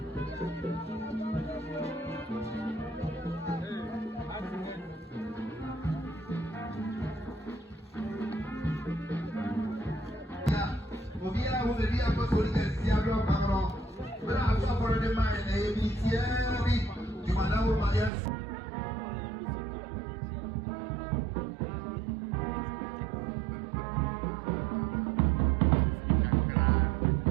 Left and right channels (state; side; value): drops out; left; at 18.1 s